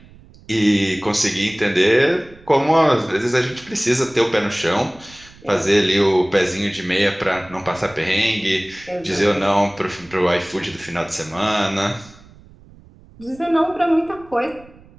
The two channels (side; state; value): right; noise; rumble, 24 dB below the sound